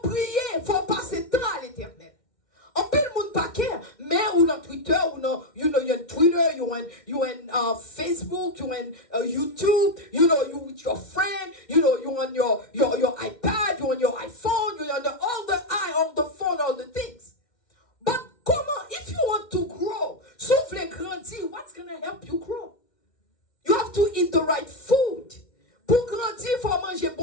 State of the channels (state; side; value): late; right; 2.1 ms